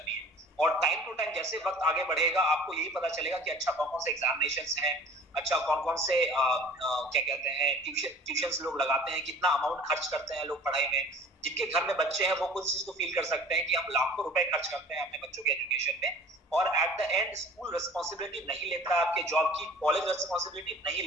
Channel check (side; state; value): both; normal; correlation 0.46